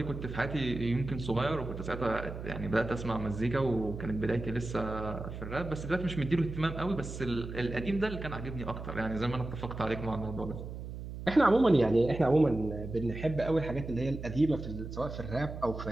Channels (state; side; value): noise; right; hum, 9 dB below the sound